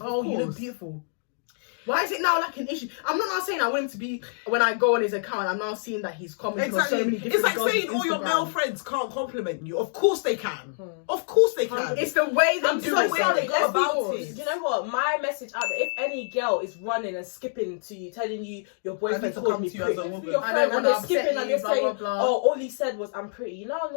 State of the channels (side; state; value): right; silent; digital silence